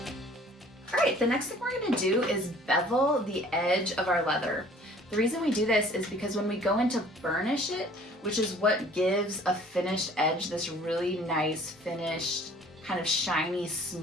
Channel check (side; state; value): both; normal; correlation 0.52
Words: the next thing we're gonna do is bevel the edge of our leather. The reason we do this is because when we go in to burnish it, which is what gives a finished edge this really nice finished, kind of shiny,